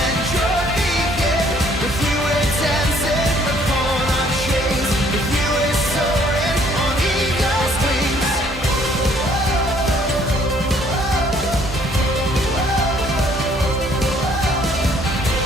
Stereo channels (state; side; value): normal; both; correlation 0.62